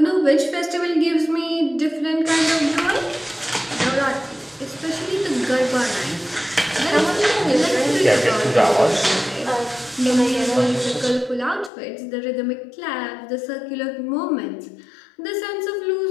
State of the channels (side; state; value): right; drops out; at 11.7 s